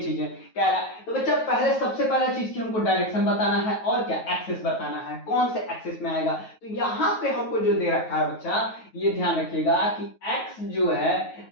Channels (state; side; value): late; right; 9.3 ms